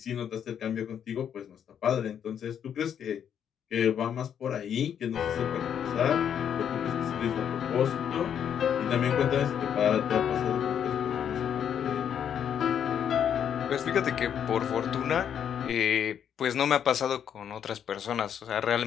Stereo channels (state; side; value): quieter; right; 8.7 dB